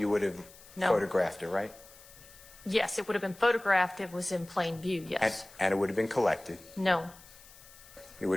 would have photographed it, right? Yes, it would have been photographed. It was in plain view, yes. And it would have been collected. No. It would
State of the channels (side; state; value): left; noise; hiss, 21 dB below the sound